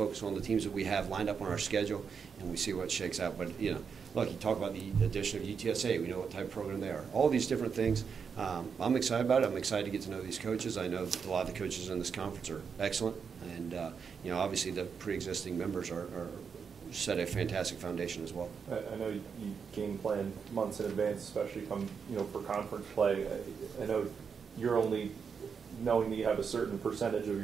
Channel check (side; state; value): left; quieter; 6.2 dB